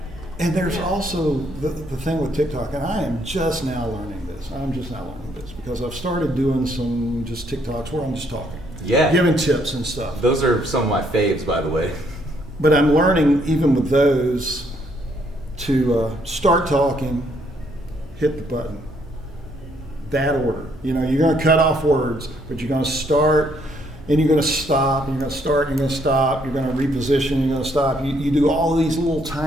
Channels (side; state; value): both; normal; correlation 0.69